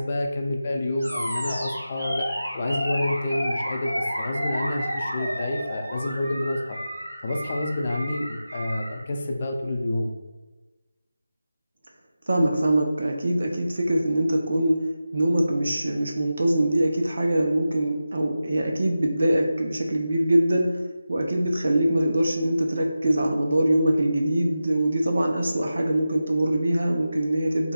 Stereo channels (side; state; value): both; inverted; correlation -0.92